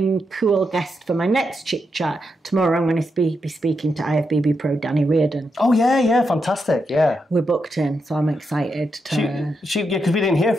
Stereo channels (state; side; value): normal; both; correlation 0.84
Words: cool guest for my next Chick Chat. Tomorrow I'm going to be speaking to IFBB Pro Danny Reardon. Oh, yeah, fantastic, yeah. We're booked in, so I'm excited to... Because we didn't hear